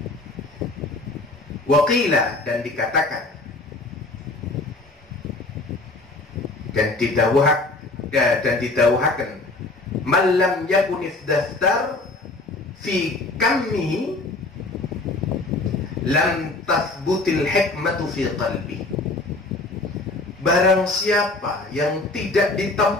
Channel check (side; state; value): right; quieter; 3.1 dB